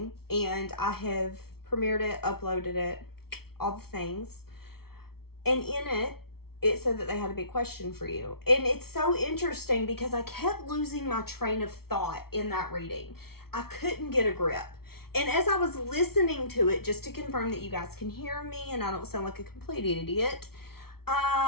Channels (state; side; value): late; right; 0.94 ms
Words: and I have premiered it, uploaded it, all the things. And in it, it said that they had a big question for you. And it's so interesting because I kept losing my train of thought in that reading. I couldn't get a grip. And as I was listening to it, just to confirm that you guys can hear me and I don't sound like a complete idiot,